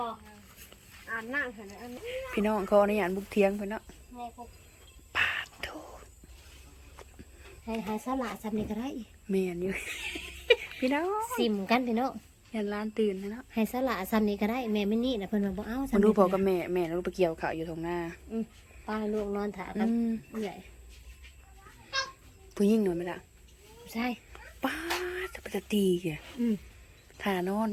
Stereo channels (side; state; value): both; identical; correlation 1.00